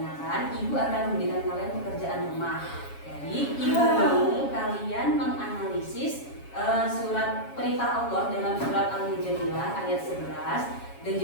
ibu akan memberikan kalian pekerjaan rumah. Jadi ibu mau kalian menganalisis surat perintah Allah dalam surat Al-Mujadilah ayat 11 dan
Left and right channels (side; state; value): right; late; 7.2 ms